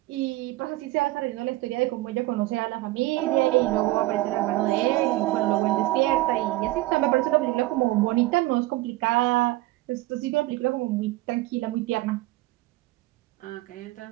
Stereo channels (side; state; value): left; quieter; 18.6 dB